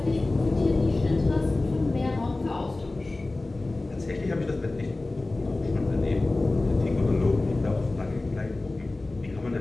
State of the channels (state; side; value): quieter; right; 3.0 dB